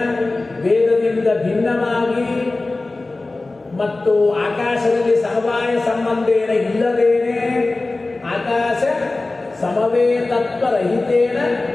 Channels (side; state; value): right; quieter; 3.2 dB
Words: ವೇದದಿಂದ ಭಿನ್ನವಾಗಿ ಮತ್ತು ಆಕಾಶದಲ್ಲಿ ಸಮವಾಯ ಸಂಬಂಧೇನ ಇಲ್ಲದೇನೆ ಆಕಾಶ ಸಮವೇತತ್ವರಹಿತೇನ